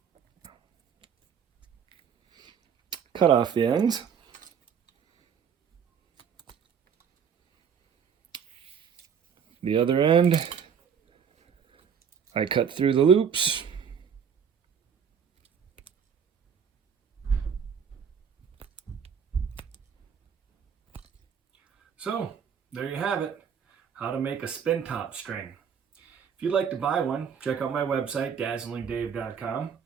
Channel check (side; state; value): left; quieter; 7.3 dB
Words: Cut off the ends. The other end, I cut through the loops. So, there you have it, how to make a Spintop string. If you'd like to buy one, check out my website, dazzlingdave.com.